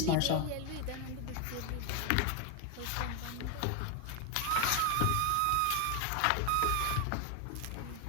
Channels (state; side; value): different; both; correlation 0.01